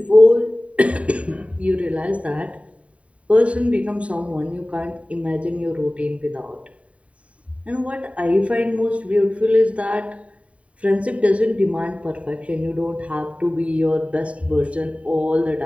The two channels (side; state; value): left; late; 0.065 ms